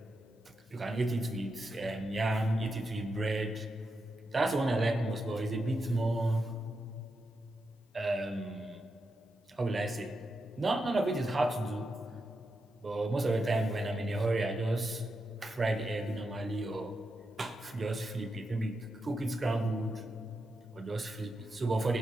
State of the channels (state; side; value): normal; both; correlation 0.86